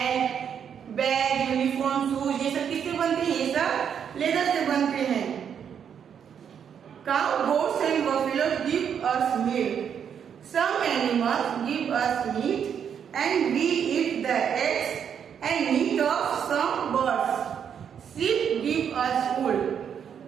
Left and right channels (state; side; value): quieter; left; 8.0 dB